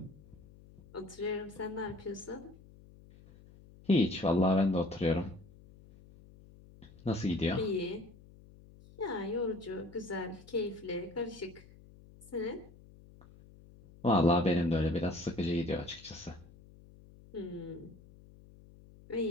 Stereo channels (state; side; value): noise; left; hum, 22 dB below the sound